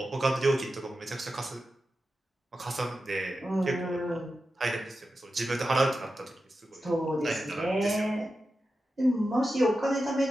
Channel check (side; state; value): both; normal; correlation 0.91